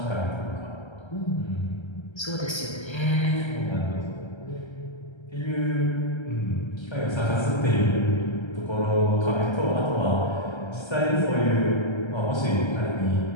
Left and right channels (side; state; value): right; late; 1.3 ms